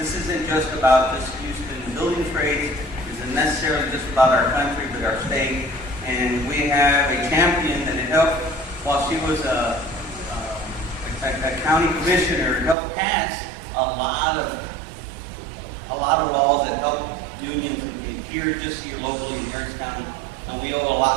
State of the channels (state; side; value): drops out; left; at 12.8 s